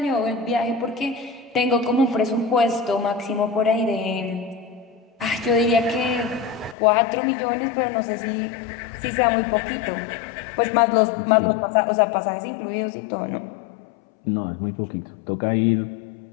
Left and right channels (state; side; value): drops out; right; at 6.8 s